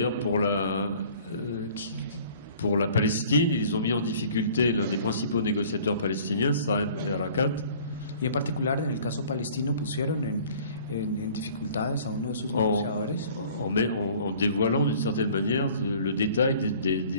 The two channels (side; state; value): both; inverted; correlation -0.51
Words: pour la Palestine, ils ont mis en difficulté l'un des principaux négociateurs palestiniens, Saeb Erekat. Y en particular en el caso palestino pusieron en dificultades a uno de sus negociadores. En dévoilant d'une certaine manière le détail